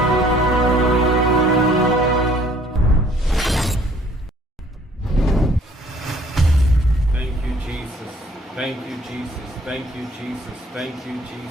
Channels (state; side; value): normal; both; correlation 0.58